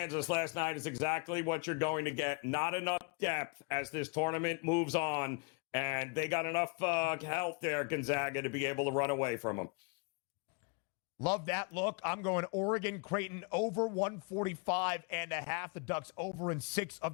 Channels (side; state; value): right; quieter; 33.4 dB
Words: last night is exactly what you're going to get. Not enough depth as this tournament moves on, and they got enough health there, Gonzaga, to be able to run away from them. Love that look. I'm going Oregon Creighton over 145.5. The Ducks over in 6 of